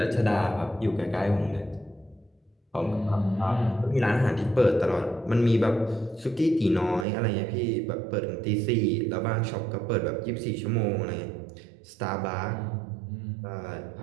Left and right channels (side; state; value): left; drops out; at 7.1 s